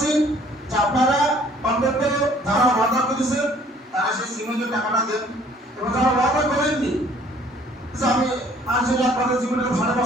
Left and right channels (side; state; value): both; normal; correlation 0.57